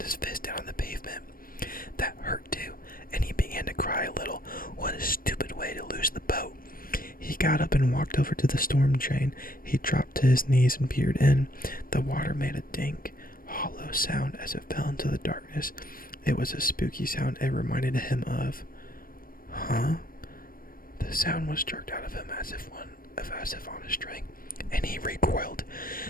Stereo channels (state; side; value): late; right; 0.41 ms